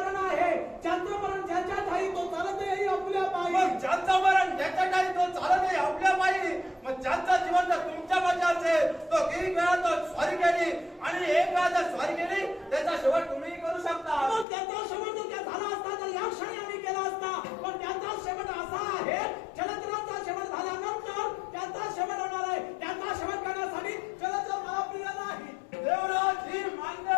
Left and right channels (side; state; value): right; drops out; at 14.5 s